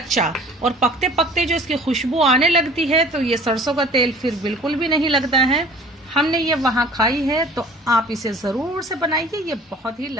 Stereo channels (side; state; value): both; normal; correlation 0.48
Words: और पकते पकते जो इसकी खुशबू आने लगती है तो ये सरसों का तेल फिर बिल्कुल भी नहीं लगता है। हमने ये वहाँ खाई है तो आप इसे ज़रूर से बनाइए, ये बहुत ही